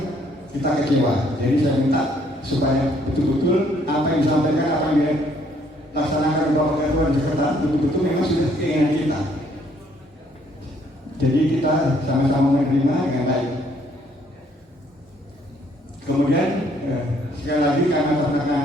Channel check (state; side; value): normal; both; correlation 0.66